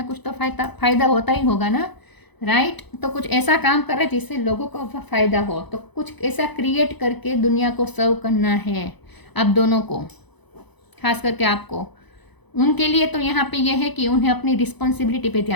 कुछ तो फायदा होता ही होगा ना, राइट। तो कुछ ऐसा काम कर रहे हैं जिससे लोगों को फ़ायदा हो, तो कुछ ऐसा क्रिएट करके दुनिया को सर्व करना है आप दोनों को, खास करके आपको। उनके लिए तो यहाँ पे यह है कि उन्हें अपनी रिस्पॉन्सिबिलिटी पे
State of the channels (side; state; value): right; late; 0.99 ms